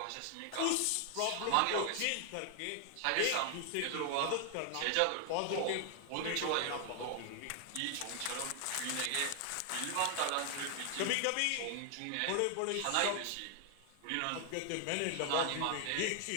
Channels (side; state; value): both; different; correlation 0.00